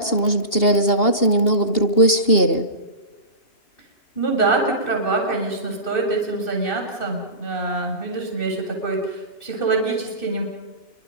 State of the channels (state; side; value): late; right; 2.8 ms